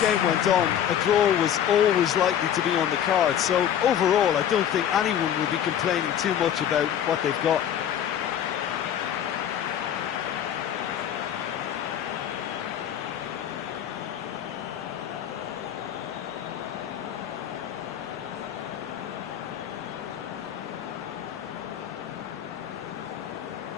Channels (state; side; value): quieter; right; 9.8 dB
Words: went on, a draw was always likely to be on the card. So overall, I don't think anyone will be complaining too much about what they've got.